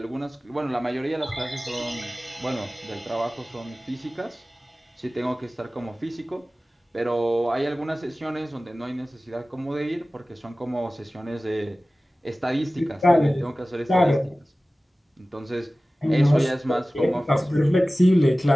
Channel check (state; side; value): normal; both; correlation 0.97